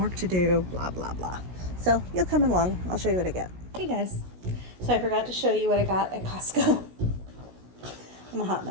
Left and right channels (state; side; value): late; left; 16 ms